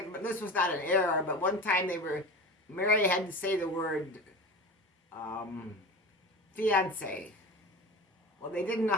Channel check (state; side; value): normal; both; correlation 0.31